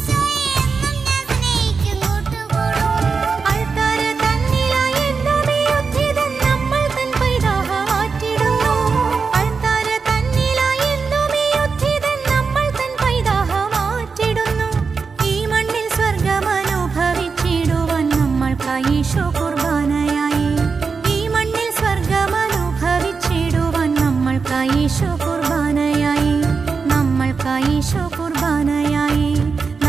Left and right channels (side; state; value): left; quieter; 5.0 dB